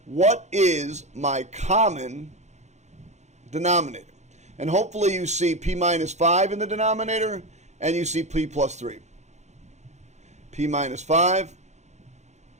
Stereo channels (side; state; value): left; late; 0.33 ms